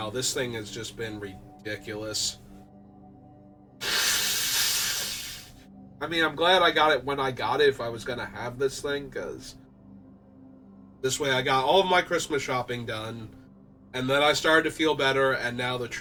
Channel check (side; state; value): both; identical; correlation 1.00